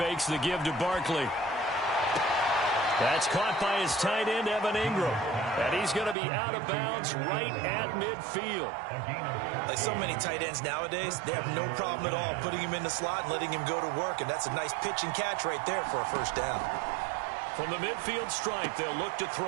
the give to Barkley. That's caught by his tight end, Evan Ingram. And he's going to be out of bounds right at midfield. Like so many tight ends nowadays, they have no problem at all putting him in the slot and letting him go to work. And that's a nice pitch and catch right there for a 1st down. From the midfield stripe, they'll look to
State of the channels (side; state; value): left; drops out; at 6.2 s